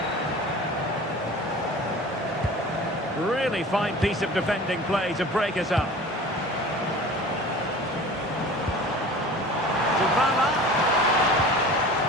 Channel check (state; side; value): normal; both; correlation 0.40